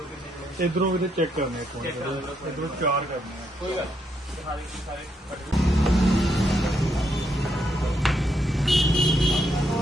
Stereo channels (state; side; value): normal; both; correlation 0.77